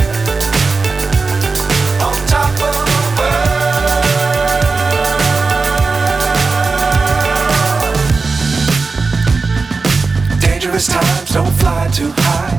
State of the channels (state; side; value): quieter; left; 4.2 dB